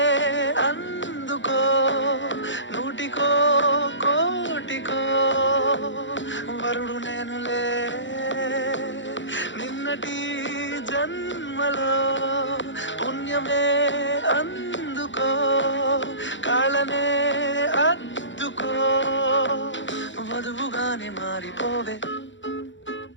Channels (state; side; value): late; right; 0.54 ms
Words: అందుకో నూటికో కోటికో వరుడు నేనులే నిన్నటి జన్మలో పుణ్యమే అందుకో కాళ్ళనే అద్దుకో వధువుగానే మారిపోవే